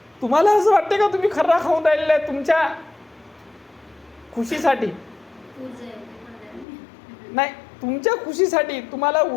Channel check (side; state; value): right; drops out; at 6.7 s